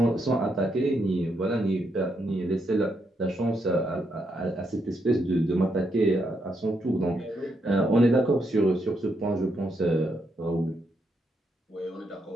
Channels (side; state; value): both; normal; correlation 0.79